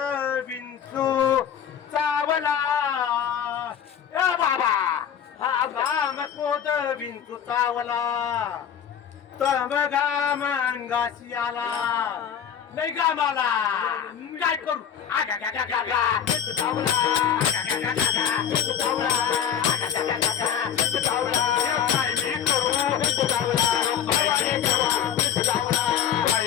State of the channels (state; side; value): quieter; right; 8.7 dB